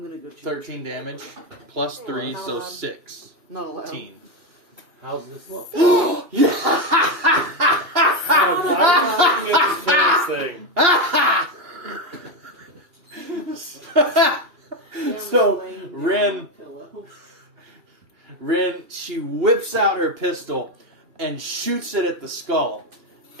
going to go check. 13 damage plus 3, so 16. Not allowed. How's this look? I'm this thing. So, Rin, she whips out her pistol and shoots it at the skull.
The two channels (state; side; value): late; left; 2.8 ms